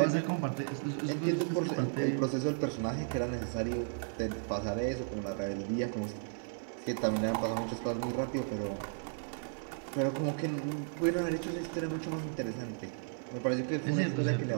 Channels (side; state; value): left; silent; 55 dB below the other